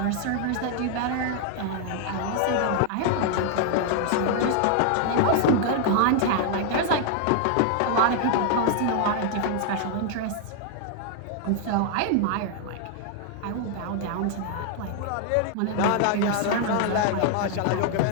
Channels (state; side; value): different; both; correlation 0.00